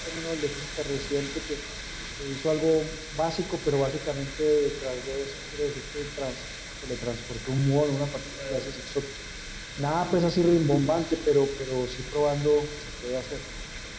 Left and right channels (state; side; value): identical; both; correlation 1.00